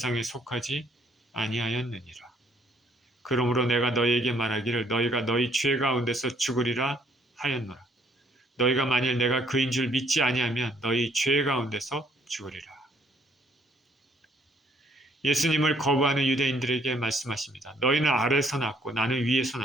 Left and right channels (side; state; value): both; normal; correlation 0.65